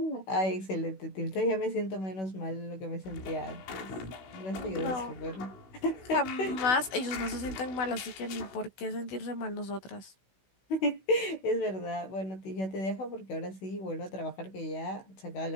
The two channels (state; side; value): late; right; 16 ms